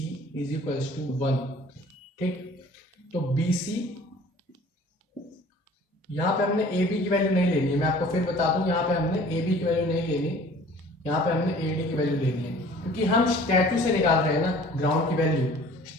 is equals to 1, ठीक। तो बी सी, यहाँ पे हमने ए बी की वैल्यू नहीं लेनी है, मैं आपको फिर बता दूं, यहाँ पे हमने ए बी की वैल्यू नहीं लेनी, यहाँ पे हमने ए डी की वैल्यू लेनी है, क्योंकि हम स्टैचू से निकाल रहे हैं ना ग्राउंड की वैल्यू।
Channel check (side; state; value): both; normal; correlation 0.49